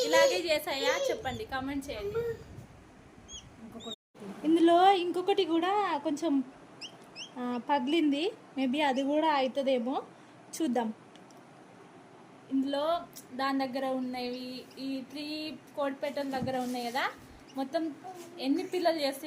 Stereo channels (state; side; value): identical; both; correlation 1.00